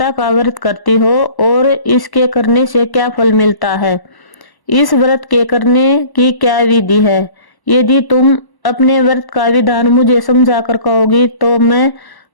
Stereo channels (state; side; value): late; right; 1.0 ms